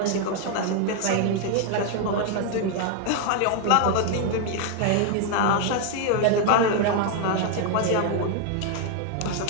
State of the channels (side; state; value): both; different; correlation 0.00